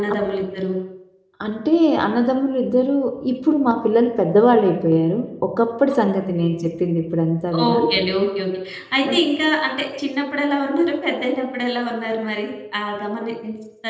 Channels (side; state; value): both; identical; correlation 1.00